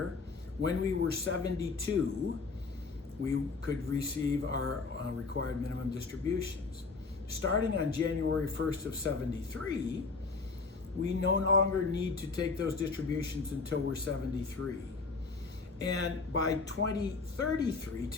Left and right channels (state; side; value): quieter; right; 4.2 dB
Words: when we were 72, we could receive our required minimum distributions. Starting on January 1st of 73, we no longer need to take those distributions until we're 73. And by 2033,